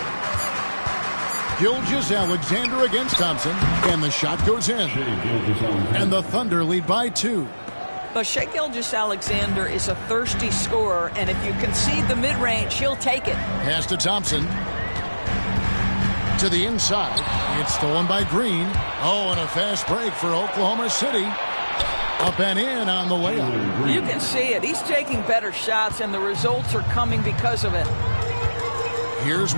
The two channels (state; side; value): inverted; both; correlation -1.00